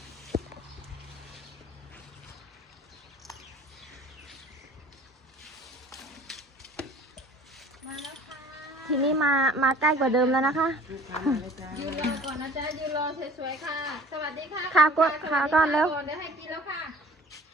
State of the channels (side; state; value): both; normal; correlation 0.48